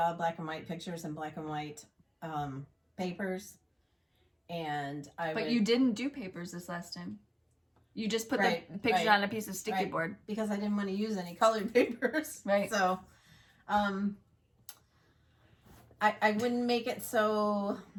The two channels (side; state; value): both; identical; correlation 1.00